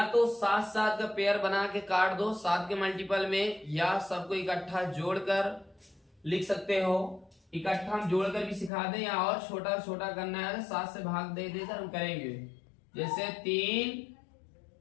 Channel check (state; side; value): drops out; right; at 8.7 s